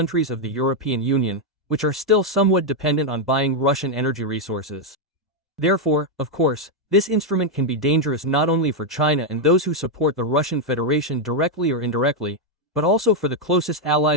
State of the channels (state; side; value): normal; both; correlation 0.01